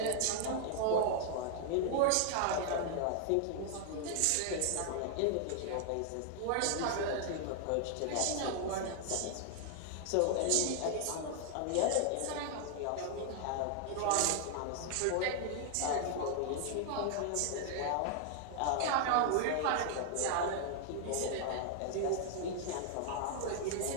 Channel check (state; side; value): different; both; correlation 0.00